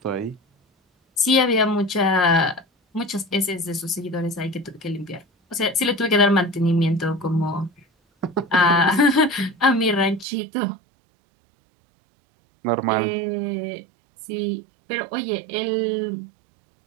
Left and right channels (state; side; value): drops out; left; at 10.2 s